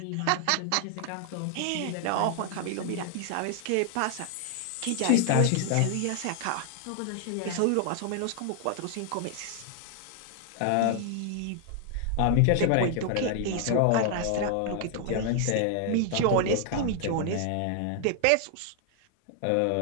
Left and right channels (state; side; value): different; both; correlation 0.00